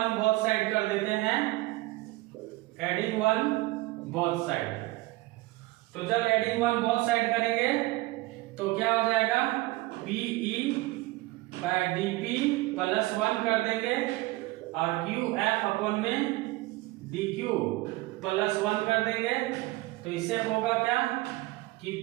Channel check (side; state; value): left; quieter; 20.4 dB